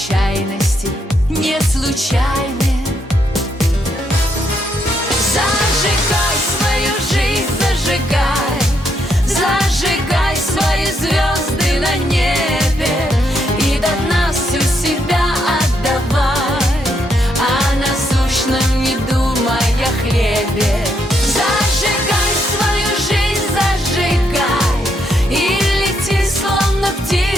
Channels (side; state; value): both; normal; correlation 0.76